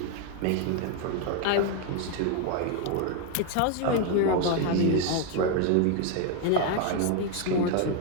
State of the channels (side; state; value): both; different; correlation 0.01